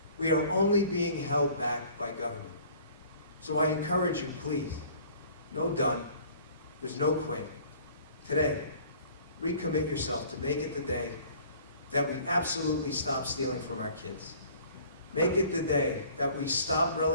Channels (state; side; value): inverted; both; correlation -0.51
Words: We are only being held back by government. So I encourage you, please, no done. There's no quit. Today, recommit yourself to make it the day that we absolutely stop stealing from our kids. Make it the day that we stop